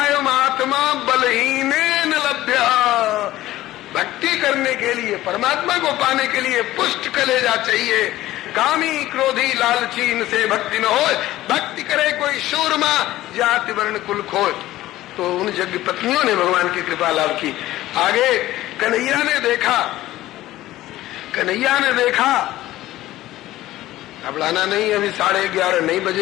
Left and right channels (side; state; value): right; quieter; 15.6 dB